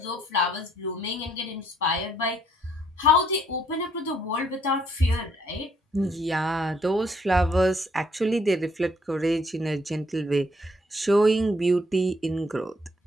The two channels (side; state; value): both; normal; correlation 0.68